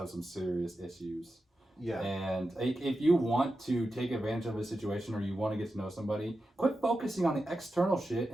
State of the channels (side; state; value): both; normal; correlation 0.90